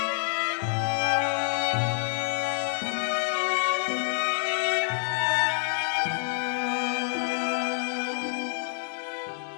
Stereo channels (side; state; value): right; silent; digital silence